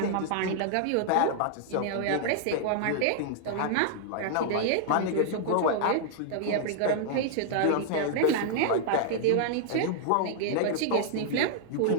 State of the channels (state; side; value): different; both; correlation -0.01